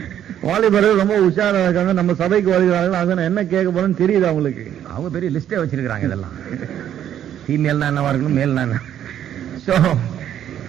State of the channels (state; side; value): quieter; left; 10.4 dB